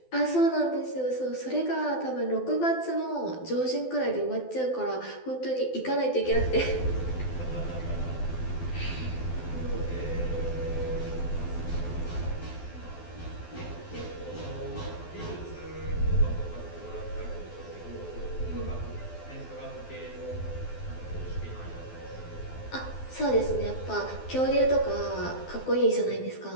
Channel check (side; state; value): right; late; 12 ms